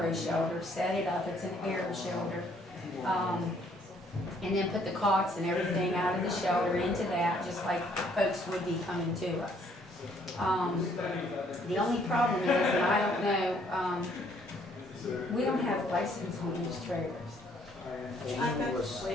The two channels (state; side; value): normal; both; correlation 0.65